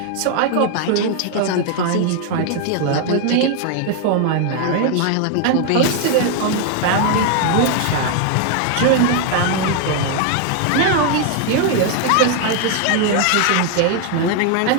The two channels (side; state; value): both; different; correlation 0.00